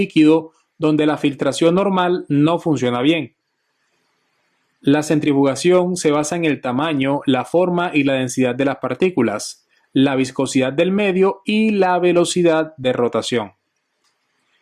donde la filtración normal no funciona bien. La centrifugación se basa en el tamaño, la forma y la densidad de las partículas, la viscosidad del medio y la velocidad de rotación.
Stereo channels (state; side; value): identical; both; correlation 1.00